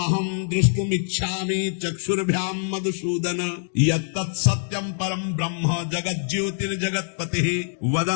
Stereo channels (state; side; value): silent; right; digital silence